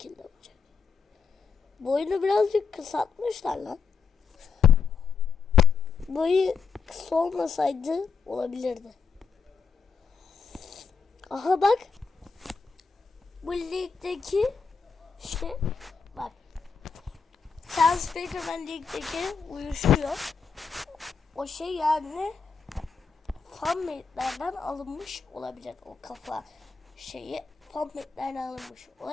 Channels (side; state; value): right; quieter; 5.5 dB